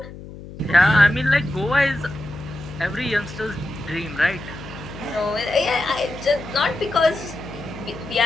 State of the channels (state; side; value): noise; left; hum, 14 dB below the sound